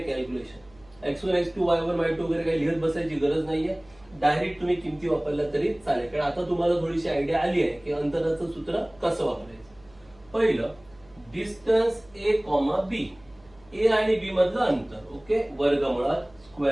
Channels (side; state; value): right; noise; hum, 28 dB below the sound